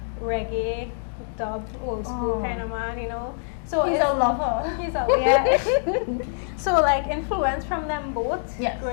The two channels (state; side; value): silent; right; digital silence